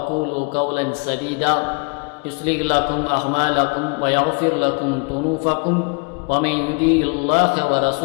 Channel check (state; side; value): quieter; right; 33.5 dB